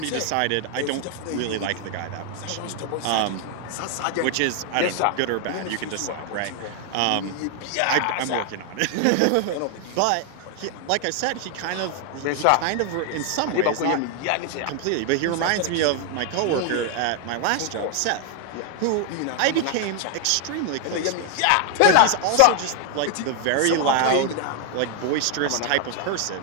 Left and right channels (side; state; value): both; different; correlation 0.00